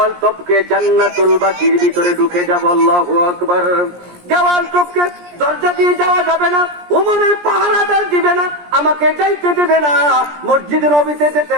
টপকে জান্নাতুল বাকির ভিতরে ঢুকে যাব। আল্লাহু আকবার। দেওয়াল টপকে দরজা দিয়ে যাওয়া যাবে না, উমরের পাহারাদার দিবে না, আমাকে যাইতে দেবে না, মসজিদে নবীতে যেতে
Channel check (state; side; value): late; left; 17 ms